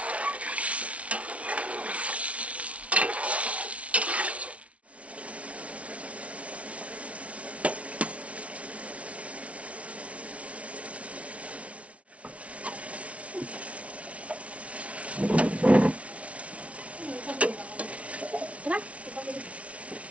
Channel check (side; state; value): left; late; 0.064 ms